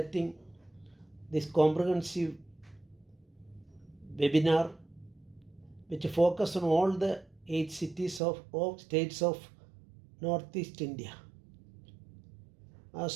this comprehensive webinar which focus on all the 8 cities of states of Northeast India.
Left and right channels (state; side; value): drops out; left; at 8.2 s